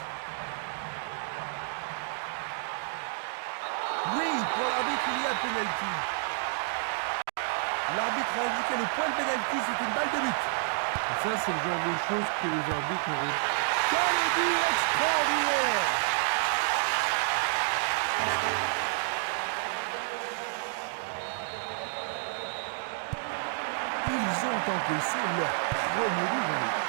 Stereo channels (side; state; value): left; silent; digital silence